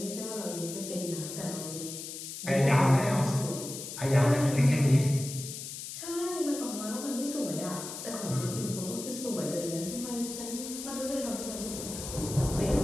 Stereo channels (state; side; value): noise; left; hiss, 9 dB below the sound